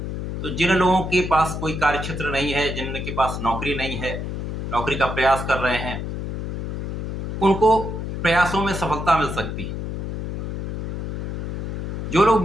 तो जिन लोगों के पास कोई कार्यक्षेत्र नहीं है, जिनके पास नौकरी नहीं है, नौकरी का प्रयास कर रहे हैं, उनको प्रयासों में सफलता मिल सकती है। जो लोग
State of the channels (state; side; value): noise; left; hum, 4 dB below the sound